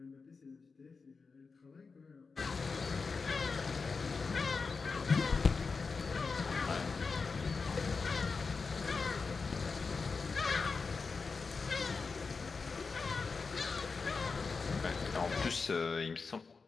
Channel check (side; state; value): right; quieter; 4.6 dB